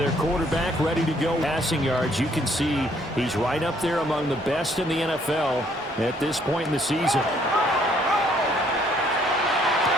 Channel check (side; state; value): both; normal; correlation 0.65